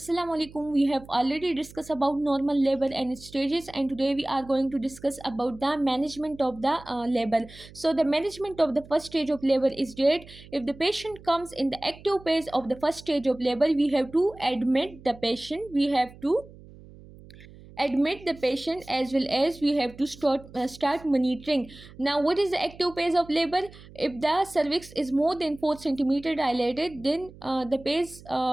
alaikum. We have already discussed about normal labor and its stages, and today we are going to discuss about the management of the labor. So the management of the first stage of labor is that if the patient comes in the active phase of the first stage of labor, we have to admit the patient. We have to admit the patient, as well as we have to start monitoring. Now, what is the active phase of labor? If the cervix is more than 4 centimeter dilated, then the phase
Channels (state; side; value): noise; right; hum, 20 dB below the sound